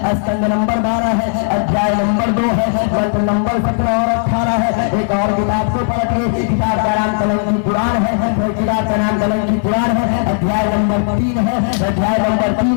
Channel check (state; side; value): silent; right; 69 dB below the other